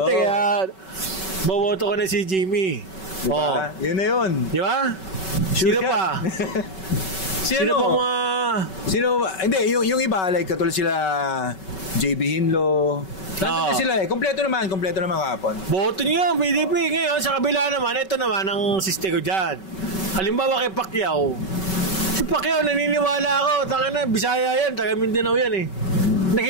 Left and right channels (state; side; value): late; right; 5.3 ms